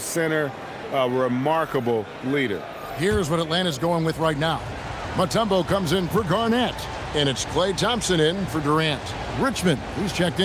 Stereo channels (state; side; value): identical; both; correlation 1.00